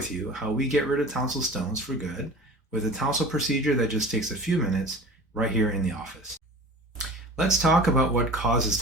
you how we get rid of tonsil stones for good with a tonsil procedure that just takes a few minutes right here in the office. Let's talk about what causes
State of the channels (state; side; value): normal; both; correlation 0.39